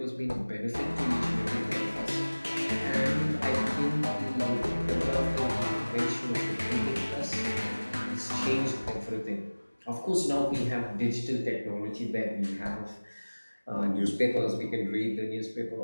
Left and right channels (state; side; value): inverted; both; correlation -1.00